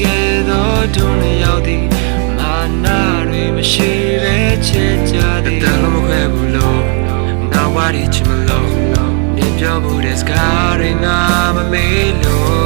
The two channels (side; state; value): left; quieter; 39.9 dB